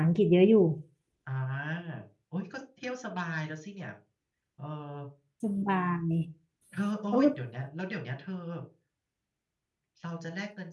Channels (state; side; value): identical; both; correlation 1.00